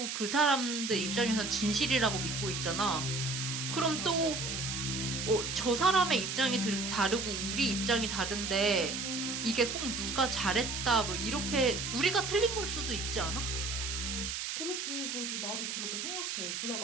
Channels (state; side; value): noise; right; hiss, 3 dB below the sound